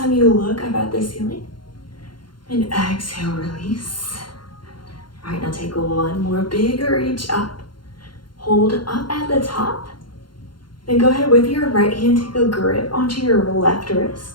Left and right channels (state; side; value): late; right; 0.72 ms